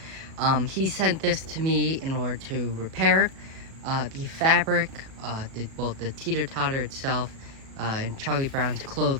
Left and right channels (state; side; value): late; left; 37 ms